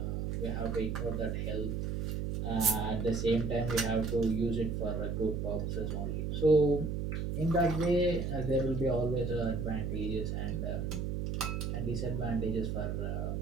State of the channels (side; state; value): right; noise; hum, 1 dB below the sound